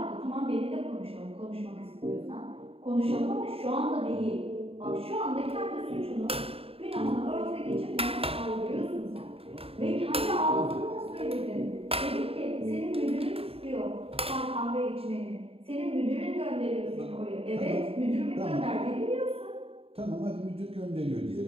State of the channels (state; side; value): late; left; 0.28 ms